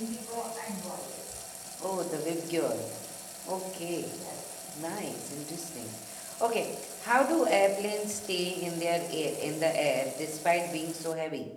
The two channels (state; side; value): identical; both; correlation 1.00